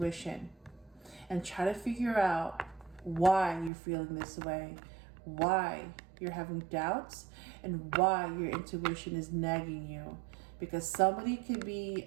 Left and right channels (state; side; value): drops out; left; at 3.7 s